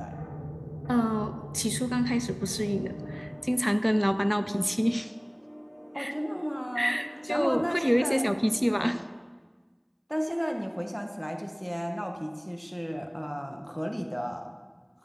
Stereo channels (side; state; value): both; identical; correlation 1.00